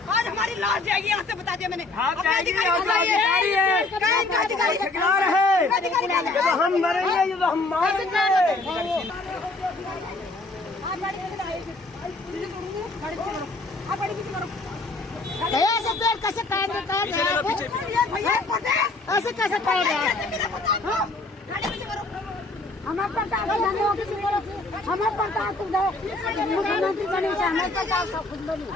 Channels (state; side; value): quieter; right; 3.2 dB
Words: आज हमारी लाश जाएगी, यहाँ से बता दिया मैंने। हम मरेंगे, ये तो हम मारेंगे। ऐसे पेड़ कैसे काट देता है? ऐसे कैसे काट रहा है? हमारे प्रताप हमारे प्रताप मुख्यमंत्री बने, हमारे प्रताप सब खुद बनी।